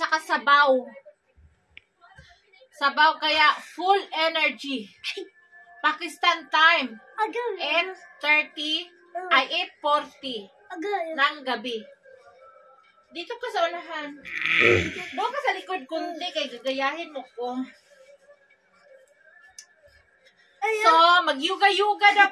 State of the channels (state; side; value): identical; both; correlation 1.00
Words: sabaw. Sabaw kaya full energy. Pakistan time. 8:30 ay 8:40 ng gabi. Dito ka sa unahan. Doon ka sa likod kundi kay gagayahin mo ko. So, mag-yuga-yuga daw